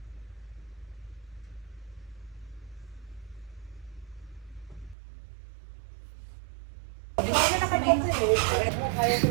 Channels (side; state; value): left; drops out; at 5.0 s